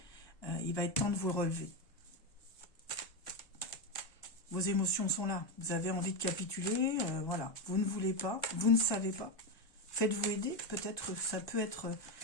il va être temps de vous relever. Vos émotions sont là. Vous avez envie de capituler, voilà. Vous ne voulez pas, vous ne savez pas. Faites-vous aider. Peut-être ça peut être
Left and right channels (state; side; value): late; right; 1.2 ms